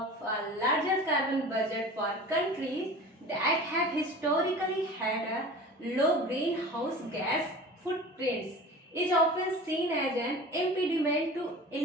larger carbon budget for countries that have historically had a low greenhouse gas footprints is often seen as an impediment to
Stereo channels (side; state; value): both; normal; correlation 0.38